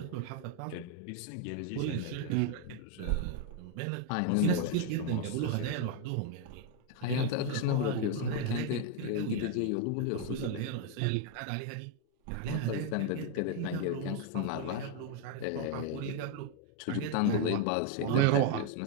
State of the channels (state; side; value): different; both; correlation 0.01